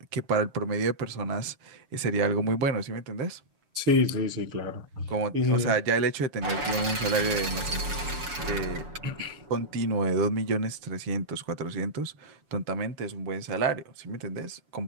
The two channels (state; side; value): late; left; 7.0 ms